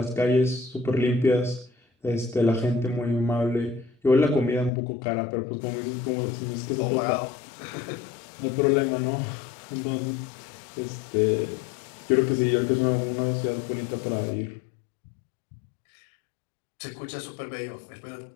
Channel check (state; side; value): drops out; right; at 4.7 s